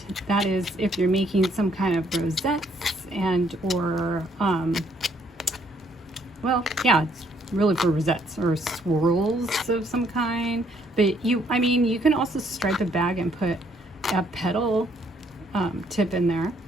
that is if you're making some kind of rosettes or well, yeah, it's really for rosettes or swirls of some kind. But you can also stripe a bag and put a petal tip in there,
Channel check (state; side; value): normal; both; correlation 0.68